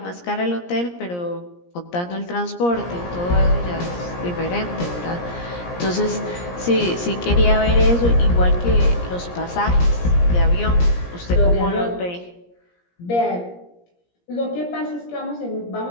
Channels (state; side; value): late; right; 17 ms